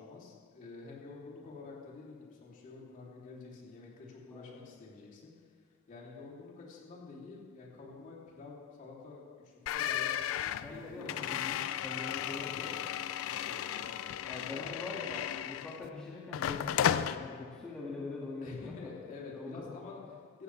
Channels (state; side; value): quieter; right; 8.0 dB